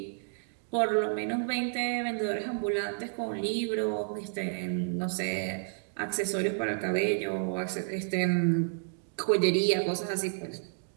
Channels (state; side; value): silent; left; digital silence